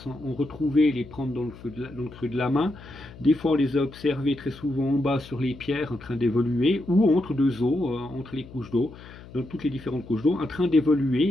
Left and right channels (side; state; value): left; noise; hum, 18 dB below the sound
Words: en retrouver et les prendre dans le creux de la main. Des fois on les a observés très souvent en bas sur les pierres en train d'évoluer ou entre deux eaux, entre les couches d'eau, dans toutes les différentes couches d'eau, en train